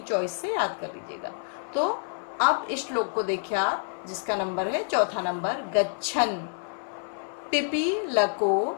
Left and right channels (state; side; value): silent; right; 57 dB below the other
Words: चॉइस से याद कर लीजिएगा। तो अब इस श्लोक को देखिए आप, जिसका नंबर है चौथा नंबर। गच्छन पिपीलको